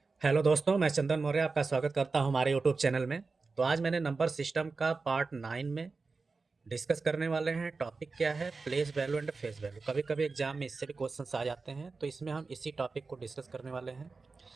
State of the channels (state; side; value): quieter; left; 4.2 dB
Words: Hello दोस्तों, मैं चंदन मौर्य आपका स्वागत करता हूं हमारे यूट्यूब चैनल में। तो आज मैंने नंबर सिस्टम का पार्ट 9 में डिस्कस करने वाले हैं। टॉपिक क्या है? Place value and face value. कभी कभी एग्जाम में इससे भी क्वेश्चंस आ जाते हैं, तो इसमें हम इसी टॉपिक को डिस्कस करने वाले हैं